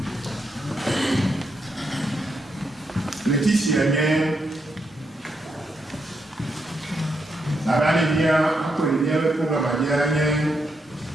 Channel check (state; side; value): normal; both; correlation 0.80